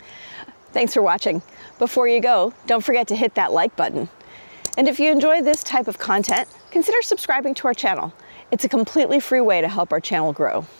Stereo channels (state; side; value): inverted; both; correlation -1.00